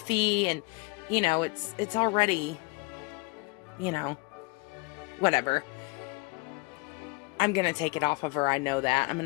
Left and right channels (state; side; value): quieter; right; 27.7 dB